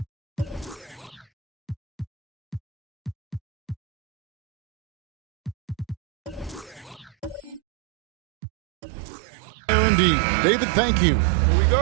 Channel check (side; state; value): left; drops out; at 7.6 s